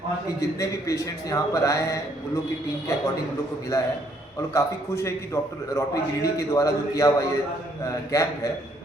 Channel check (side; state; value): both; normal; correlation 0.68